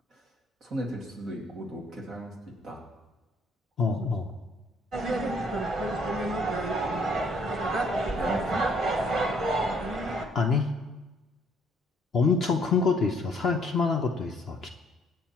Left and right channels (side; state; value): both; normal; correlation 0.64